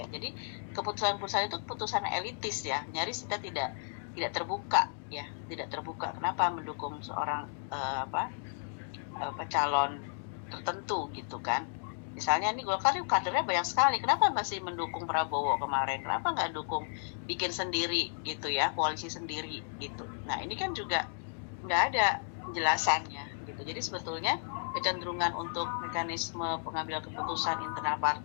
Jadi keputusan-keputusan itu keputusan elitis ya, nyaris kita tidak terbuka ya, tidak terbuka. Kenapa mendukung seorang calon tertentu gitu kan. Misalnya ini Golkar kadernya banyak sekali, kenapa masih mendukung Prabowo kemarin? Kenapa nggak dukung bikin sendiri gitu ya, koalisi sendiri gitu. Nah, ini kan juga nggak ada penjelasannya gitu. Jadi sebetulnya kecenderungan untuk mekanisme pengambilan keputusan internal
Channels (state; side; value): silent; right; digital silence